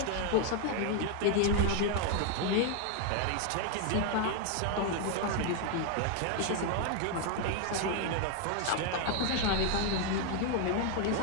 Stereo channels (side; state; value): both; different; correlation 0.01